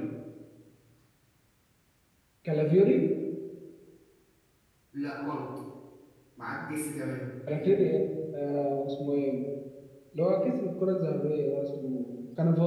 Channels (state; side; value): identical; both; correlation 1.00